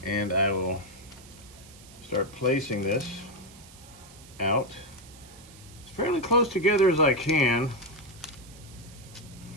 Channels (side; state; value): right; noise; hiss, 21 dB below the sound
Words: and I will start placing this out as fairly close together as I can.